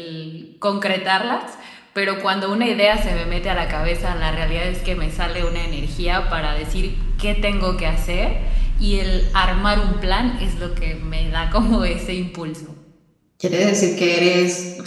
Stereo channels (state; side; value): identical; both; correlation 1.00